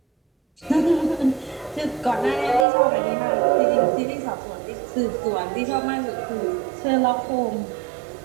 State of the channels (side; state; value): left; drops out; at 2.7 s